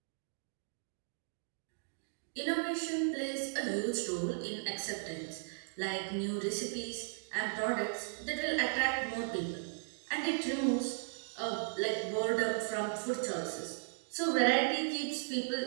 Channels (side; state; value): left; silent; digital silence